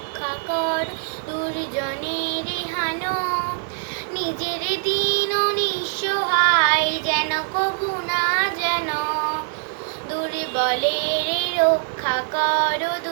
কর, দুর্জনের হানো, নিজের দীন নিঃসহায় যেন কভু না যেন। দুর্বলের রক্ষা কর,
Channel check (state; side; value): silent; left; 56 dB below the other